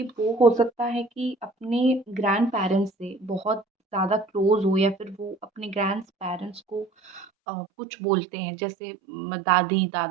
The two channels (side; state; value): left; drops out; at 7.2 s